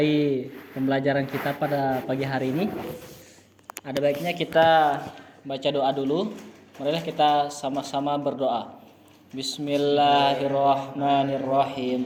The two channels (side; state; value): both; identical; correlation 1.00